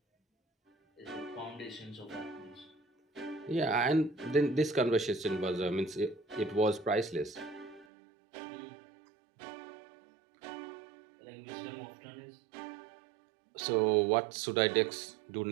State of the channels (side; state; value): left; drops out; at 7.9 s